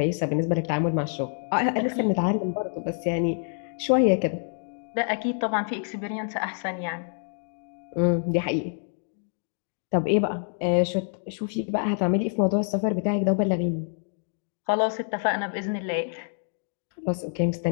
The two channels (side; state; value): right; silent; digital silence